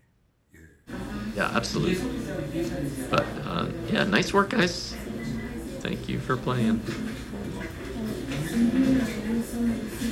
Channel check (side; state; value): both; identical; correlation 1.00